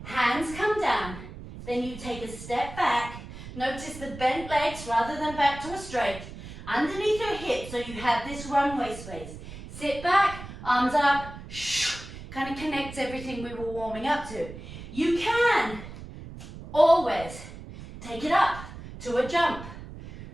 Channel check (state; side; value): noise; right; rumble, 13 dB below the sound